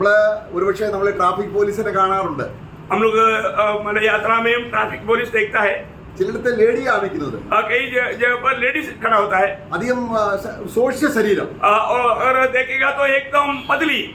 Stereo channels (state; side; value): identical; both; correlation 1.00